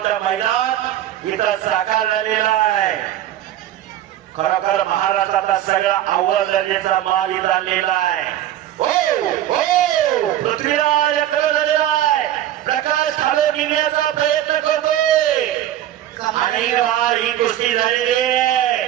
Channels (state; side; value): quieter; left; 12.4 dB